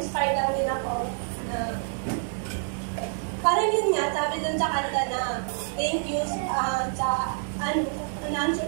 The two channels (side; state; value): left; silent; digital silence